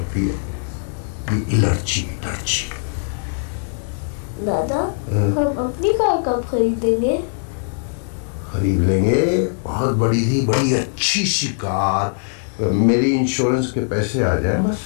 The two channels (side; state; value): right; silent; digital silence